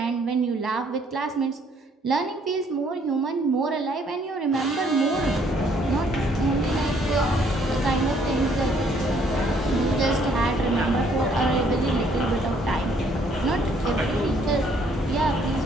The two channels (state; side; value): normal; both; correlation 0.65